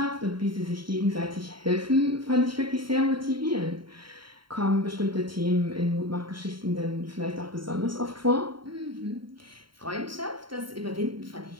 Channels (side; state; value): left; late; 0.73 ms